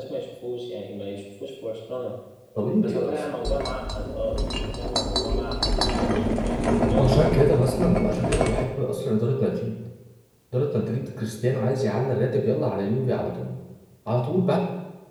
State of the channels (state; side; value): identical; both; correlation 1.00